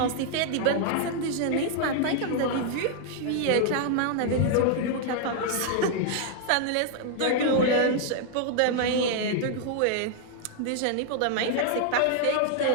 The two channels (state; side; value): different; both; correlation 0.00